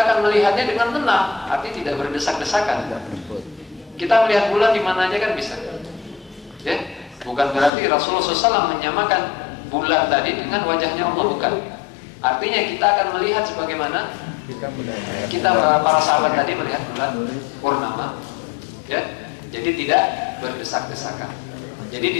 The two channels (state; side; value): drops out; right; at 7.7 s